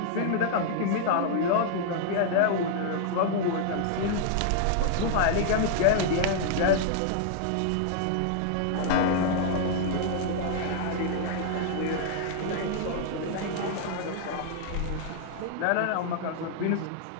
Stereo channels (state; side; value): different; both; correlation -0.01